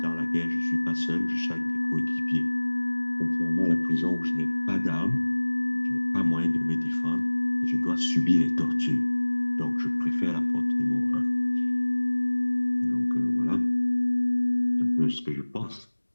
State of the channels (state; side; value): inverted; both; correlation -1.00